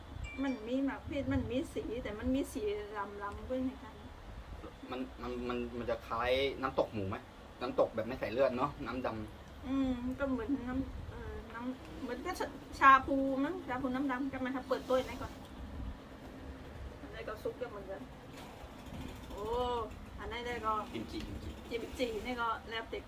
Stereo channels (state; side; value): identical; both; correlation 1.00